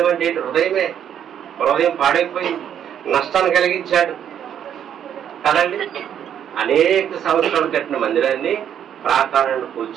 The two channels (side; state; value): left; quieter; 9.4 dB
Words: అంటే హృదయమే. హృదయం పాడైపోయింది, నష్టాన్ని కలిగించాడు కదండి. అనేక సంవత్సరాలు కట్టిన మందిరాన్ని, ప్రాకారాన్ని